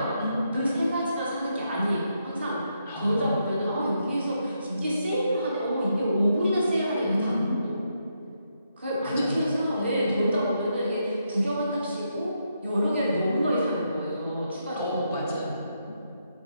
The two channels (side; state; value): both; inverted; correlation -0.80